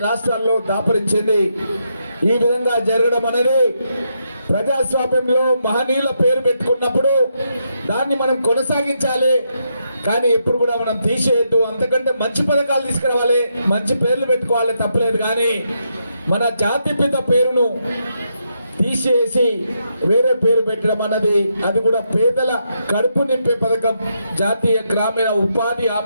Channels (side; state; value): both; inverted; correlation -0.80